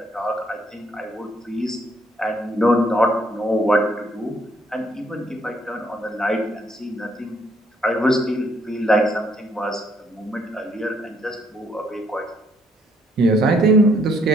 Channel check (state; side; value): normal; both; correlation 0.69